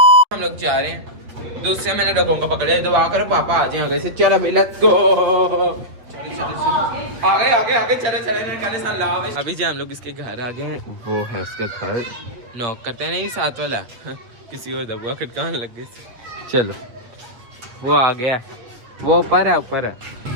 हम लोग जा रहे हैं। दूसरे मैंने डगों का पकड़े, दुआ करो पापा आ जाए आगे से। चलो भाई लेट्स गो। आगे चलो अभी जो हम लोग इसके घर आ गए हैं, वो है उसका घर। नॉक करते हैं, नहीं साथ वाला किसी और दबुआ खटकाने लग गए। चलो वो आ गया, वो ऊपर है।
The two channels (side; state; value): left; late; 8.1 ms